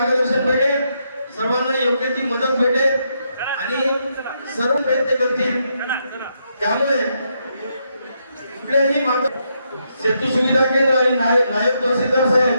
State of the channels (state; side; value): inverted; both; correlation -0.79